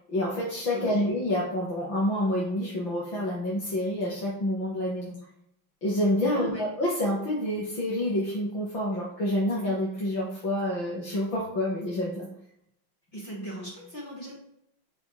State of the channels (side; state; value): right; late; 5.8 ms